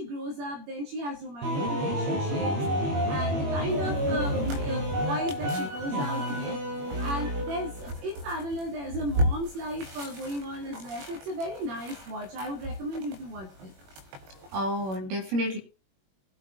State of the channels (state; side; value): late; left; 21 ms